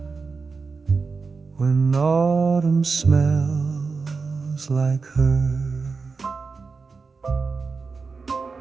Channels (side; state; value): left; quieter; 4.6 dB